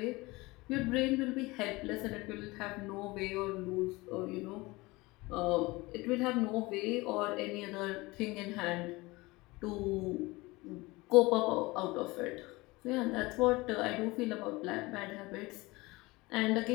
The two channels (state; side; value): quieter; right; 22.2 dB